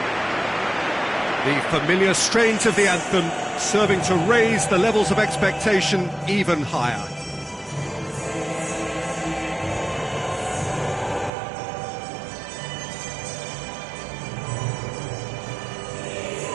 The familiar strains of the anthem serving to raise the levels of expectation even higher.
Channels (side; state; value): left; drops out; at 11.3 s